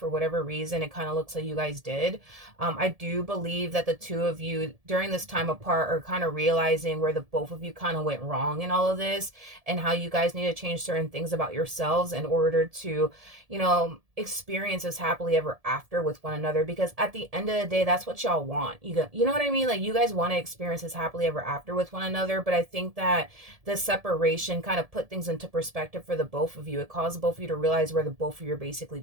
whatever reason. It kind of looks like you guys did. I do believe that the two of you during this time apart are kind of realizing where the both of you kind of went wrong in all of this, and how you guys need to change certain things about yourselves in order to, experience this happily ever after with one another. Because at the end of the day, that's what y'all want. You know what I mean? Like, you guys want to experience this happily ever after with one another, but I think that the separation kind of put things into perspective for the both of you. It caused both of you to realize where the both of you are basically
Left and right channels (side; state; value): left; late; 1.7 ms